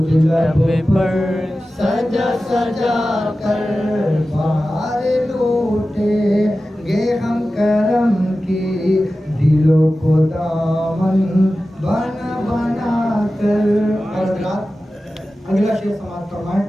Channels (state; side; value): normal; both; correlation 0.94